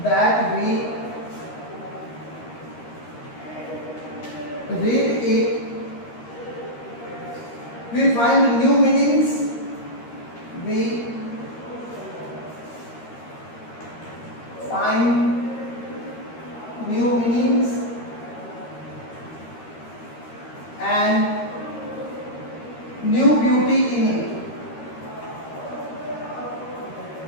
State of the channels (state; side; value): late; right; 13 ms